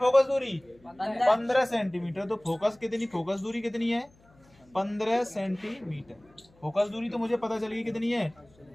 दूरी, 15 सेंटीमीटर। तो फोकस कितनी, फोकस दूरी कितनी है, 15 सेंटीमीटर। फोकस दूरी तो मुझे पता चली कितनी है,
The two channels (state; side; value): noise; left; hum, 29 dB below the sound